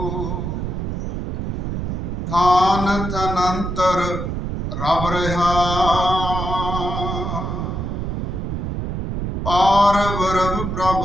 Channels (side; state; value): right; noise; rumble, 3 dB below the sound